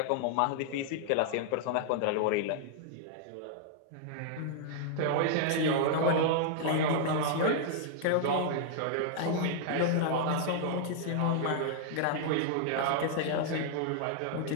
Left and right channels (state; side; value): different; both; correlation -0.01